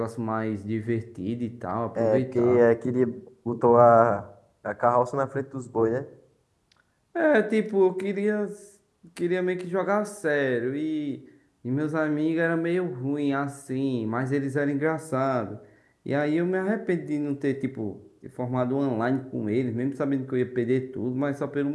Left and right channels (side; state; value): both; identical; correlation 1.00